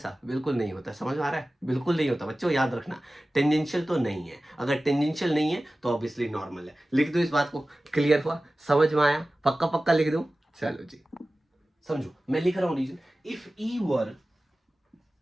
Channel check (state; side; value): normal; both; correlation 0.96